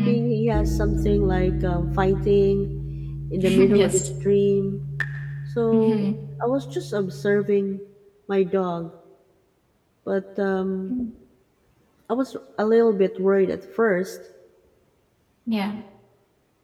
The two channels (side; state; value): both; identical; correlation 1.00